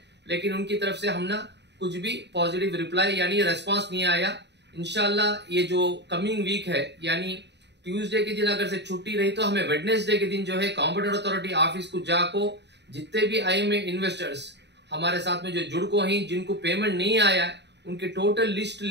लेकिन उनकी तरफ से हमने कुछ भी पॉजिटिव रिप्लाई यानी रेस्पॉन्स नहीं आया। इंशाल्लाह ये जो कमिंग वीक है यानी ट्यूसडे के दिन अगर से छुट्टी रही तो हमें वेडनेसडे के दिन जो है कॉम्पिटेंट अथॉरिटी ऑफिस को जाको जितने भी आईएमए इन्वेस्टर्स हमारे साथ में जो जुड़ को ही जिनको पेमेंट नहीं आया है उनके टोटल लिस्ट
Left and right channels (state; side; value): late; left; 0.50 ms